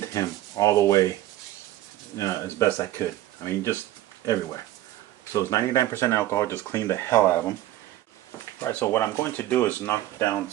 him all the way as best I could. I mean, just everywhere. So it's 99% alcohol, just clean the hell out of them. Alright, so what I'm going to do is knock down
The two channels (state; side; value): quieter; left; 14.6 dB